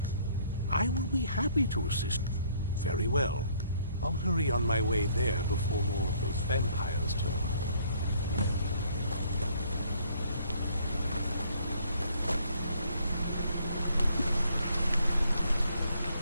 I will be happy to assist. Very well. I'll hurry on my way there before more of those vampires turn up.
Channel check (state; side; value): inverted; both; correlation -0.63